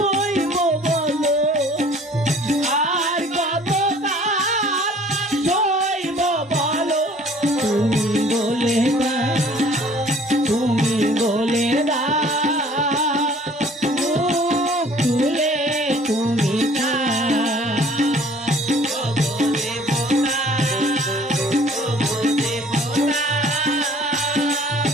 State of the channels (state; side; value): normal; both; correlation 0.53